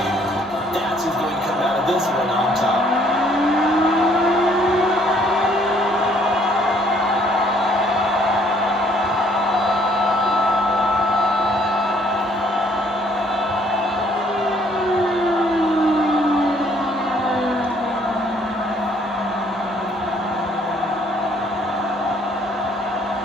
That's who's going to come out of this one on top.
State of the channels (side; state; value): both; normal; correlation 0.63